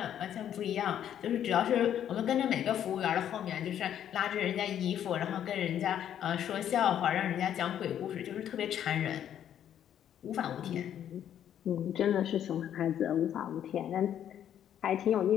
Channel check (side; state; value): right; quieter; 10.2 dB